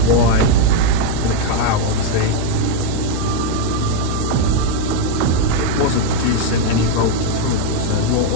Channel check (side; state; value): both; different; correlation 0.01